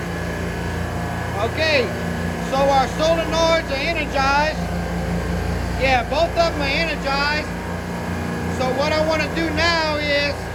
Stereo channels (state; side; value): identical; both; correlation 1.00